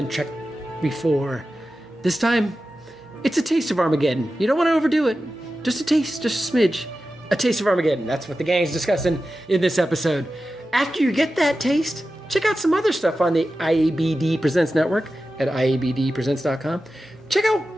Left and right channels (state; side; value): normal; both; correlation 0.93